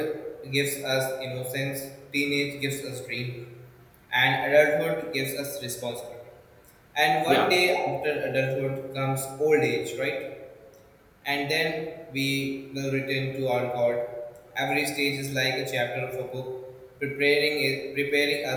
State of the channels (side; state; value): both; identical; correlation 1.00